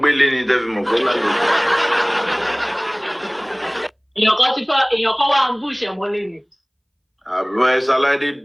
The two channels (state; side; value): identical; both; correlation 1.00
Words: believe in devil.